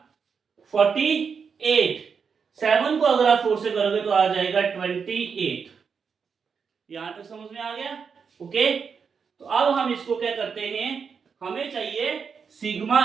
48, 7 को अगर आप 4 से करोगे तो आ जाएगा 28। यहां तक समझ में आ गया। ओके, तो अब हम इसको क्या करते हैं, हमें चाहिए सिग्मा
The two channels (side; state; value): left; quieter; 6.0 dB